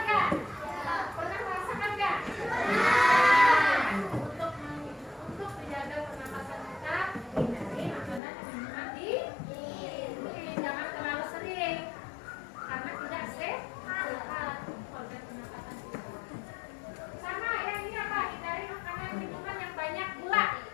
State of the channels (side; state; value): right; drops out; at 8.2 s